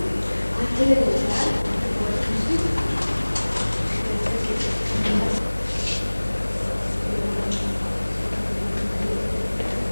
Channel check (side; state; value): both; inverted; correlation -1.00